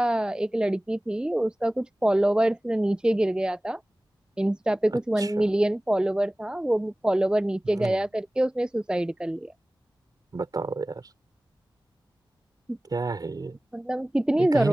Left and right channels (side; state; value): both; normal; correlation 0.98